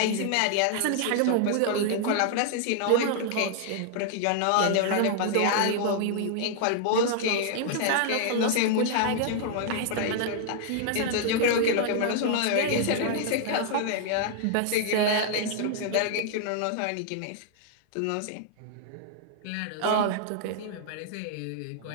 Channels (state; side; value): different; both; correlation 0.00